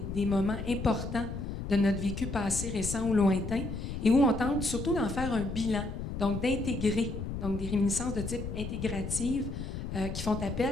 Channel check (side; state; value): left; noise; rumble, 6 dB below the sound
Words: moments importants de notre vécu passé, récent ou lointain, et où on tente surtout d'en faire un bilan, donc d'intégrer, donc des réminiscences de type intégrative qui font